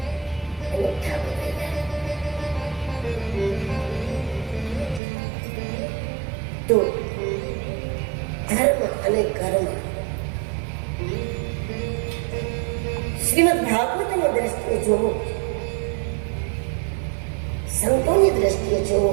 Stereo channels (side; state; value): left; drops out; at 5.0 s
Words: એનો ઠાકો થઈ જાય. તો ધર્મ અને કર્મ શ્રીમદ ભાગવતની દ્રષ્ટિએ જોવો, સંતોની દ્રષ્ટિએ જોવો,